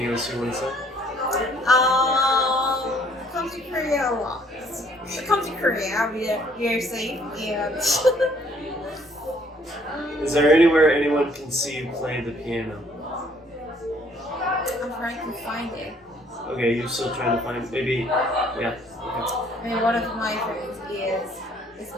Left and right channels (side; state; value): both; normal; correlation 0.62